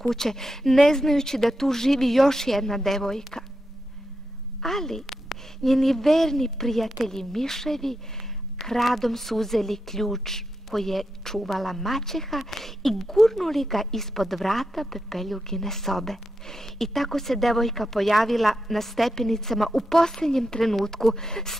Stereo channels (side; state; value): both; normal; correlation 0.86